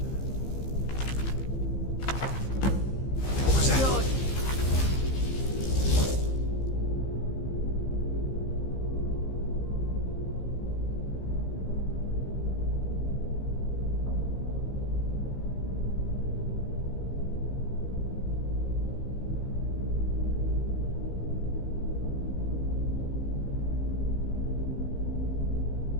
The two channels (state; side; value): late; right; 15 ms